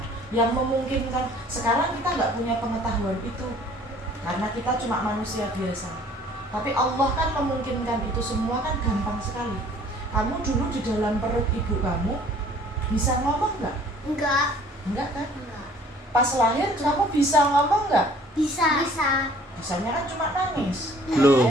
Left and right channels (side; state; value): both; normal; correlation 0.54